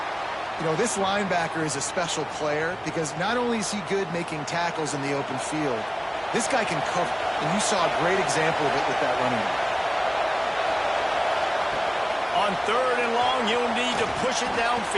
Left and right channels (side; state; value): both; identical; correlation 1.00